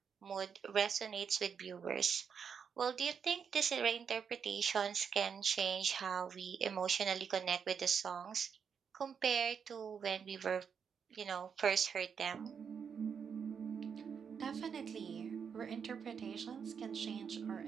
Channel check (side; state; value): left; quieter; 6.8 dB